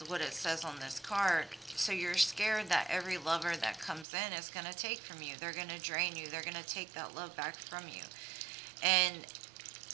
what it says on this card. So you're scared that every lover that comes in is going to take from you. They're going to drain you. They're going to take that love back from you. And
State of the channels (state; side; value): drops out; left; at 4.0 s